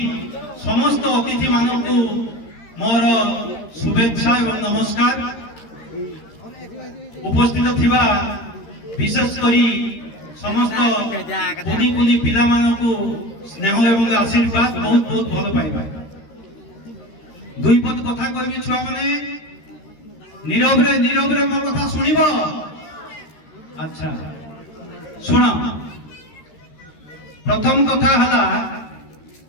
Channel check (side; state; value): right; late; 13 ms